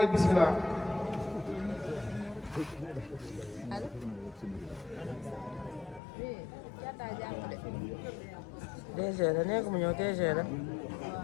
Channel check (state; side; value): drops out; right; at 6.0 s